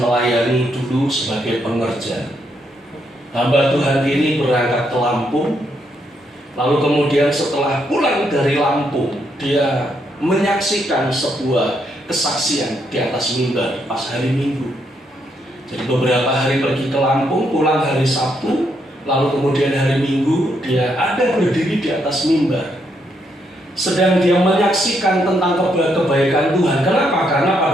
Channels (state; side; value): normal; both; correlation 0.77